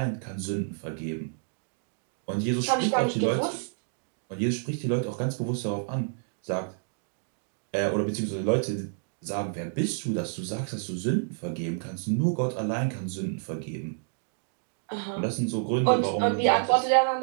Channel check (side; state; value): left; silent; digital silence